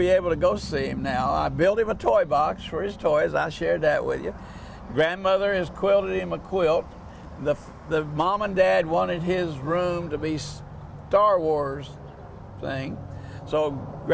able to go see him now. I built him a toy box for his toys. I shared that with you. Grandmother has quilted him a quilt. The mom and dad wanted his room to be Star Wars thing. So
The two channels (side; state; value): both; identical; correlation 1.00